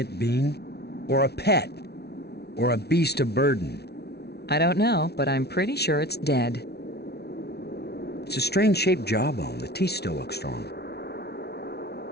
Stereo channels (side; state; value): right; late; 0.48 ms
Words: being? Or a pet? Or a beast of burden? I don't know, but I'm pretty sure it's dead. It's a strange-shaped jawbone. The teeth still look strong.